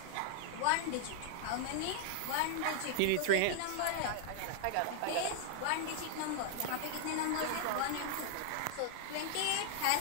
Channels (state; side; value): different; both; correlation 0.00